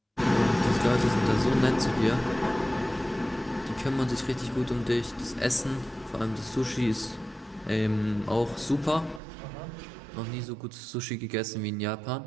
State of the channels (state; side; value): drops out; left; at 9.2 s